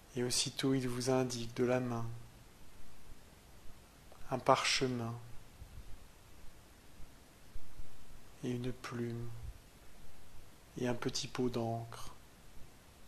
et aussitôt il vous indique de la main un parchemin et une plume et un petit pot d'encre.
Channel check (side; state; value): both; identical; correlation 1.00